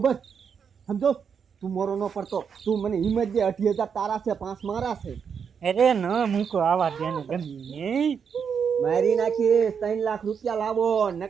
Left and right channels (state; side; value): quieter; left; 6.8 dB